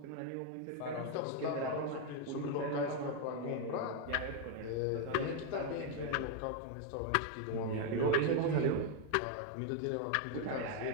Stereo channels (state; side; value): different; both; correlation 0.01